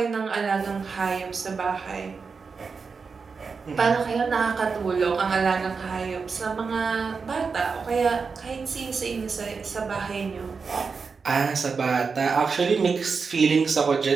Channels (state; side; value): quieter; left; 5.1 dB